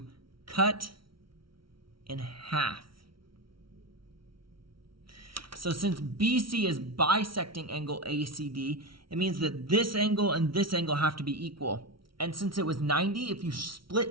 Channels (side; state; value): left; late; 0.74 ms